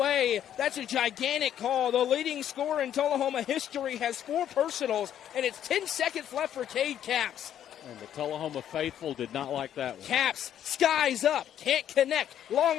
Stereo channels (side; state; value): right; quieter; 10.4 dB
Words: That's a gigantic call. The leading scorer in Tullahoma history has 4 personals, and it's 10 seconds left for Cade Capps. And the Tullahoma faithful did not like that one. Capps, skies up, can't connect.